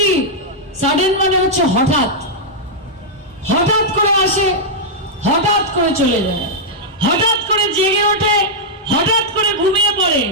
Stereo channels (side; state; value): both; normal; correlation -0.07